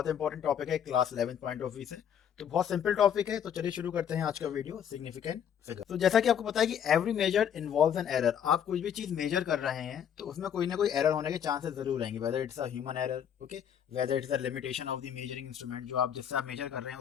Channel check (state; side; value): quieter; right; 8.8 dB